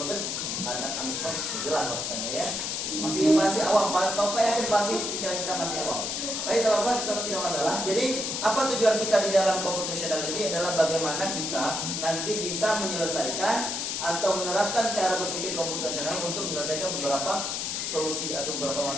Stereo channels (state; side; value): noise; left; hiss, 2 dB below the sound